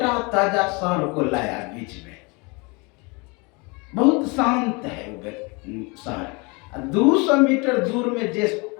ताजा सांड को लाया बीच में, बहुत शांत है वो सांड। 200 मीटर दूर में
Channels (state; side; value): quieter; right; 28.7 dB